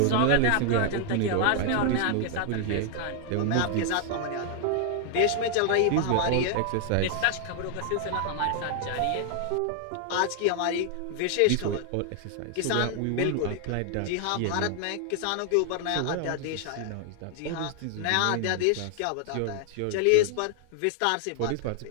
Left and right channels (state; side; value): different; both; correlation 0.00